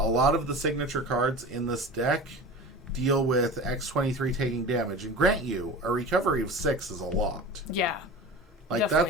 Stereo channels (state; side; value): normal; both; correlation 0.34